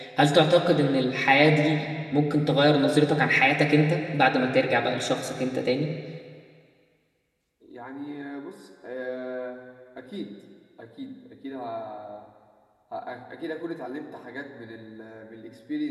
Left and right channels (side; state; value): both; identical; correlation 1.00